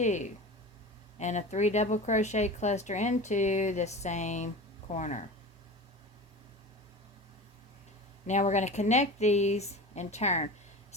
and a 3 double crochet cluster into the same corner. Now we're going to connect these and turn.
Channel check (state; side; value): normal; both; correlation 0.32